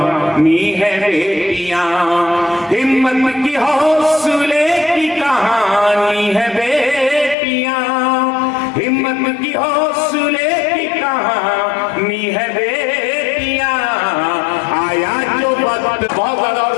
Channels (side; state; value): right; drops out; at 7.4 s